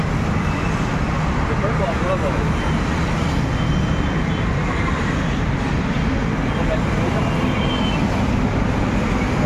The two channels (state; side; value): identical; both; correlation 1.00